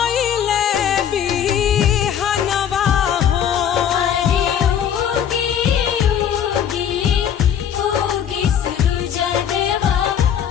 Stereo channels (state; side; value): quieter; right; 9.0 dB